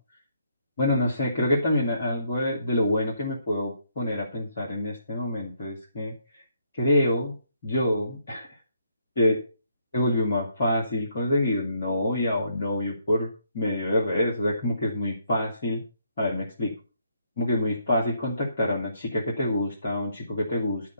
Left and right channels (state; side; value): inverted; both; correlation -0.72